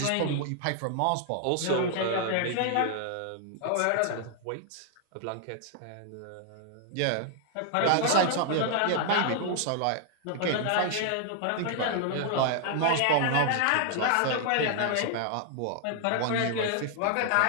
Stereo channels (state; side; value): different; both; correlation 0.00